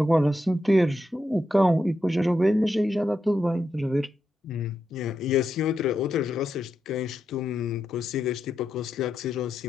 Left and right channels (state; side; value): normal; both; correlation 0.85